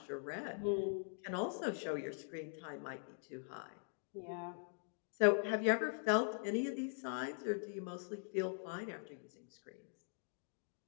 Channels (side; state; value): right; silent; digital silence